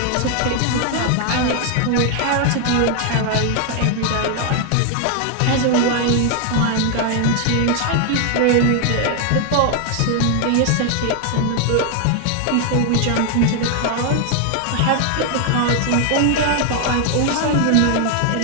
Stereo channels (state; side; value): different; both; correlation 0.00